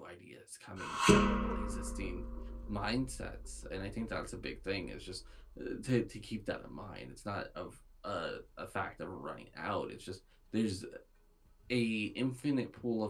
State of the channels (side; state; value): both; identical; correlation 1.00